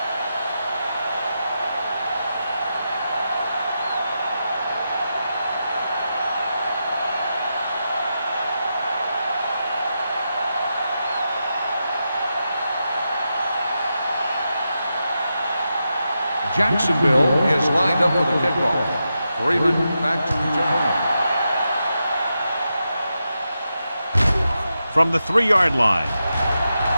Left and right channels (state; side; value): inverted; both; correlation -0.88